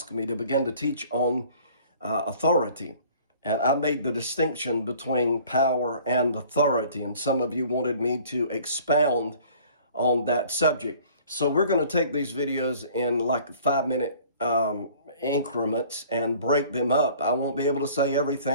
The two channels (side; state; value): both; inverted; correlation -0.51